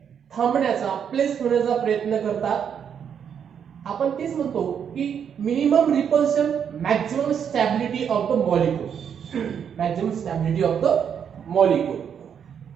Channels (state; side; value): quieter; left; 7.9 dB